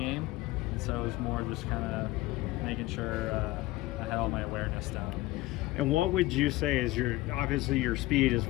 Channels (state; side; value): quieter; right; 18.6 dB